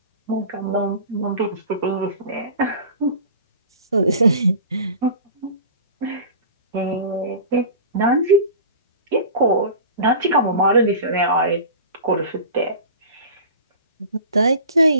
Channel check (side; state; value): both; inverted; correlation -0.37